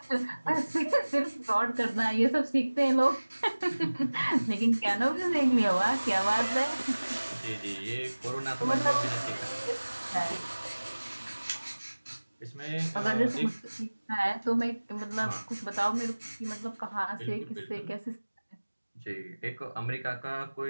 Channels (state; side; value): inverted; both; correlation -1.00